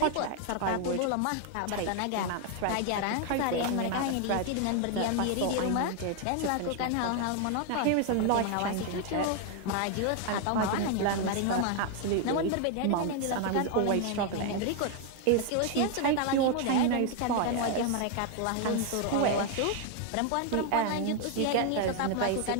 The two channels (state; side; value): different; both; correlation 0.01